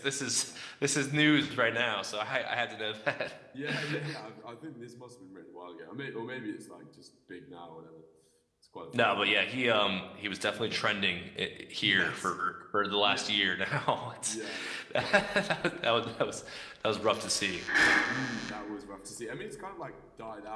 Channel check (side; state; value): both; identical; correlation 1.00